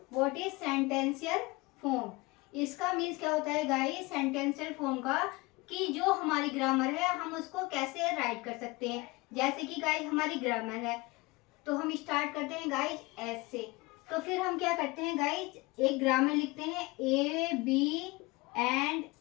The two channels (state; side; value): quieter; right; 23.5 dB